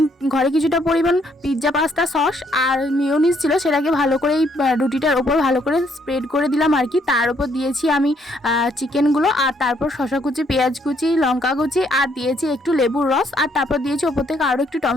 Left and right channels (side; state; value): both; normal; correlation 0.70